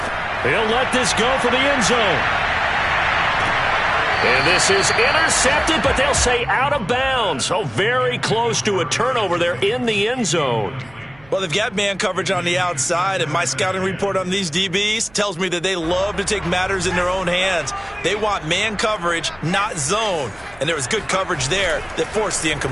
He'll let this go for the end zone. And this is intercepted, but they'll say out of bounds. Oh, very close to a turnover there in the end zone. Well, they've got man coverage on the outside, and my scouting report on these DBs tells me that they love to take matters in their own hands. They want man coverage, not zone. And there was good coverage there that forced the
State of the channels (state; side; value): noise; right; hum, 26 dB below the sound